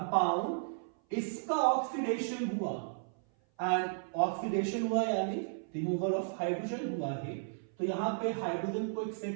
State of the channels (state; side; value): silent; left; 55 dB below the other